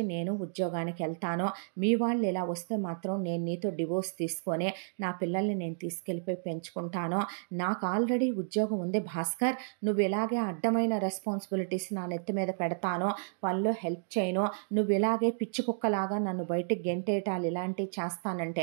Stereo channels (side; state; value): left; silent; digital silence